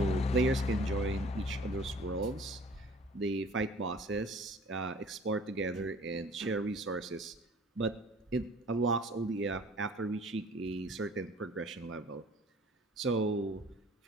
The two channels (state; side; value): normal; both; correlation 0.50